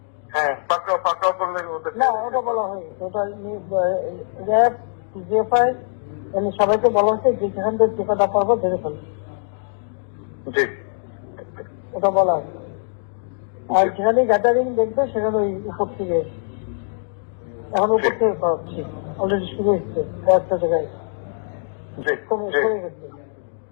হ্যাঁ, পাকড়াও করলে ওদের না, ওটা বলা হয়নি। ওটা র্যাব, জিএফআই সবাইকে বলা হচ্ছে যে যেখান থেকে টিকাটা পারবো ধরে ফেলবে, জি ওটা বলা হয়েছে। আর যেখানে গ্যাদারিং দেখবে সেখানে ওই উপর থেকে, এখন উপর থেকে করাচ্ছি, অলরেডি শুরু হচ্ছে কয়েকটা জায়গায়, জি জি কমে গেছে।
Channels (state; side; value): silent; right; digital silence